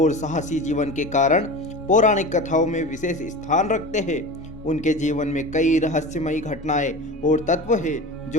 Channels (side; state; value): both; normal; correlation 0.31